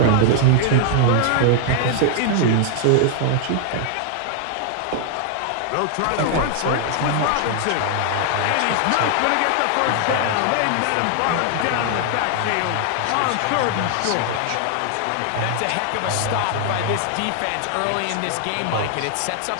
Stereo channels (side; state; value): both; different; correlation 0.00